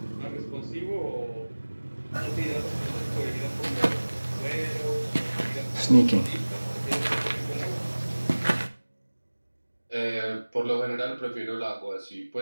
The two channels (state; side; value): inverted; both; correlation -1.00